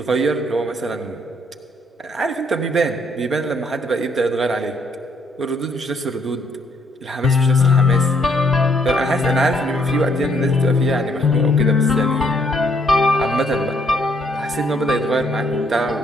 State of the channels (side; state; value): both; normal; correlation 0.69